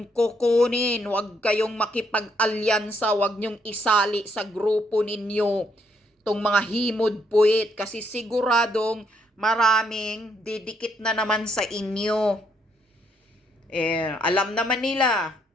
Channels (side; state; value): both; normal; correlation 0.73